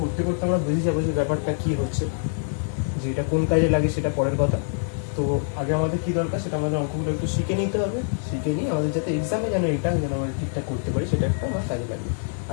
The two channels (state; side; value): silent; right; 62 dB below the other